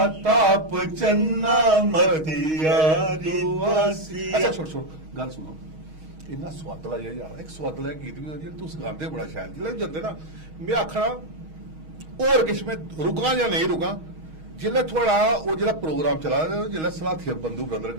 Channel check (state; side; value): late; left; 6.3 ms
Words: ताप चन्ना मथिया दुआसिया। अच्छा छोड़ छोड़ गल सुनो, इन्ना सुआदला जिहा यार एक सुआदला गीत भी जेह्ड़ा तुस गांदे बड़ा शैल, जिसलै जंदे ना मैं आखना होर किश मैं रुकां जां नेईं रुकां, जिसलै थुआढ़ा ओह् जेह्ड़ा प्रोग्राम चला दा जिसलै सलाथिया बंधु ब्रदर